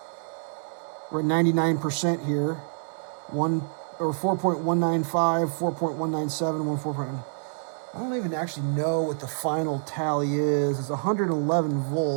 We're at 99% here. 4.195, 4.197, 14. I don't even actually know what the final tally is. It's 111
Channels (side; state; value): left; silent; 60 dB below the other